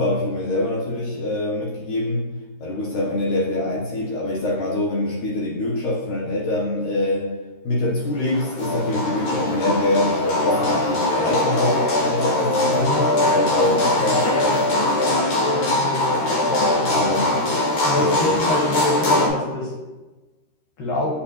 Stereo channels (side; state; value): right; late; 13 ms